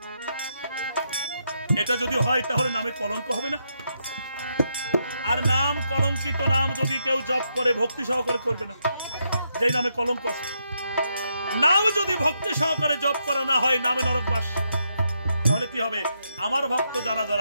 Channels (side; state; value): both; inverted; correlation -0.80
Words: এটা যদি হয় তাহলে নামে কলঙ্ক হবে না? আর নাম কলঙ্কিত নাম যদি কেউ জপ করে ভক্তি সহকারে করবে না, যেই নামে কলঙ্ক আছে। নাম যদি ভক্তি সহকারে জপ করা না হয়, নামে নরকবাস, তাহলে কি হবে? আমার ভক্ত যারা